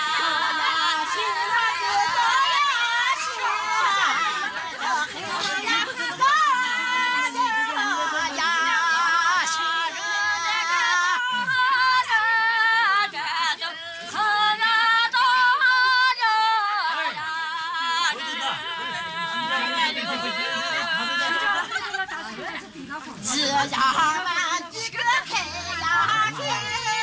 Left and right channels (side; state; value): both; identical; correlation 1.00